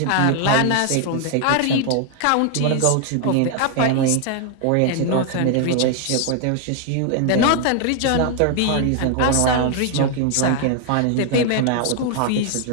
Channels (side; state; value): both; different; correlation 0.00